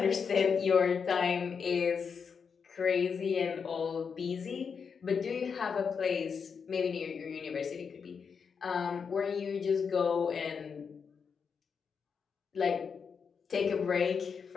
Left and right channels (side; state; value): right; quieter; 6.1 dB